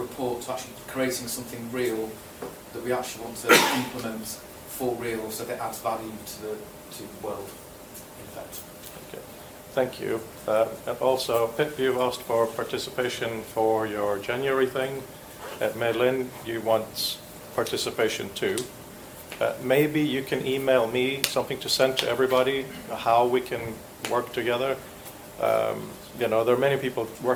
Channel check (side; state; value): both; identical; correlation 1.00